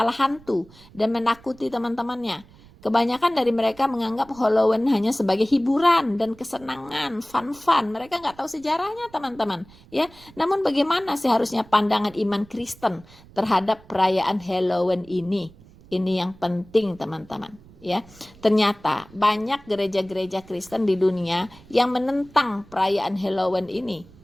hantu dan menakuti teman-temannya. Kebanyakan dari mereka menganggap Halloween hanya sebagai hiburan dan kesenangan, fun-fun. Mereka nggak tahu sejarahnya, teman-teman. Ya, namun bagaimana seharusnya pandangan iman Kristen terhadap perayaan Halloween ini? Ini yang penting, teman-teman. Ya, ternyata banyak gereja-gereja Kristen di dunia yang menentang perayaan Halloween ini.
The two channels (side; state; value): right; noise; rumble, 24 dB below the sound